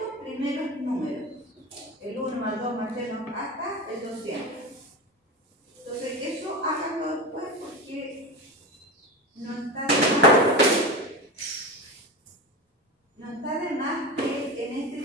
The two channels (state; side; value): normal; both; correlation 0.23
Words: primeros números? El 1 más 2 más 3 más hasta el 200. Entonces, eso háganlo después porque no está de más que en este